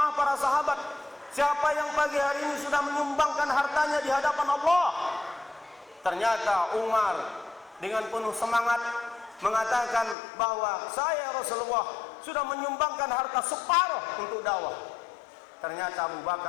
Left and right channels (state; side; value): drops out; right; at 10.2 s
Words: para sahabat, siapa yang pagi hari ini sudah menyumbangkan hartanya di hadapan Allah? Ternyata Umar dengan penuh semangat mengatakan bahwa saya Rasulullah sudah menyumbangkan harta separuh untuk dakwah. Ternyata Abu